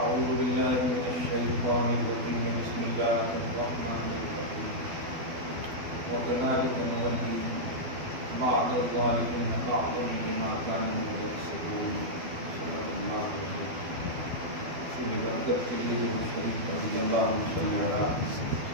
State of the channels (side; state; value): left; late; 12 ms